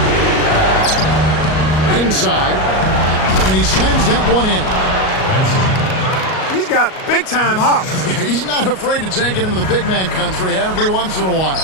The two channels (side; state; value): right; late; 38 ms